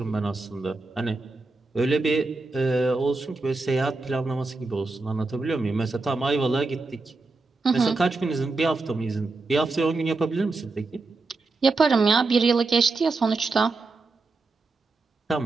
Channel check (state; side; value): quieter; left; 3.6 dB